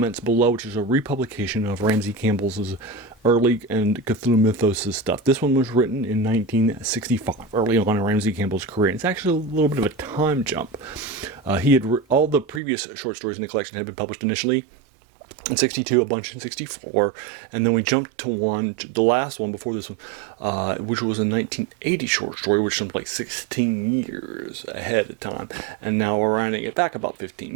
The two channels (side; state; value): left; drops out; at 12.6 s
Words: below, which is a republication of Ramsey Campbell's early and Cthulhu Mythos stuff. This one was written in 1965, early on in Ramsey Campbell's career. It's actually a little bit of a time jump. He had all the previous short stories in the collection had been published initially in 62, a bunch in 64, and then we jumped to the last one before this one, which was a 1980 short story, which jumped like 16 years ahead of time, and now we're rounding it back about 15